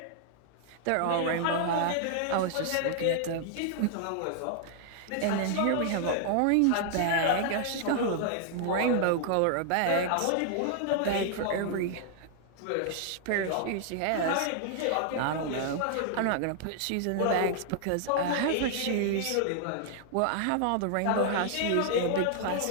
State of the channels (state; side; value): different; both; correlation 0.00